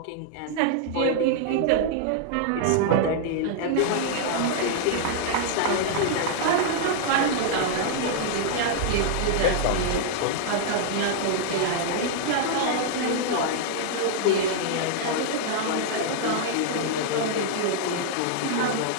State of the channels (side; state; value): both; different; correlation -0.01